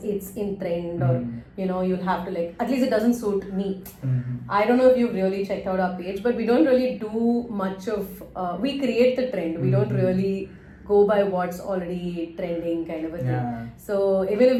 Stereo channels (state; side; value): identical; both; correlation 1.00